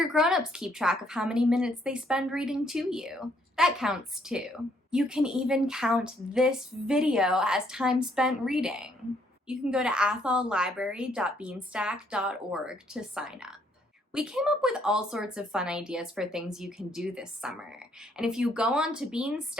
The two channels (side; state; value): both; normal; correlation 0.69